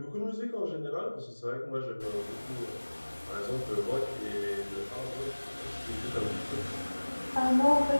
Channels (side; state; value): both; inverted; correlation -1.00